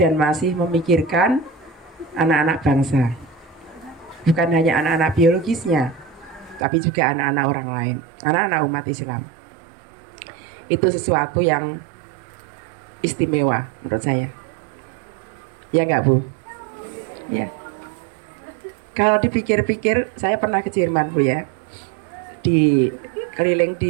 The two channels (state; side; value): drops out; left; at 6.7 s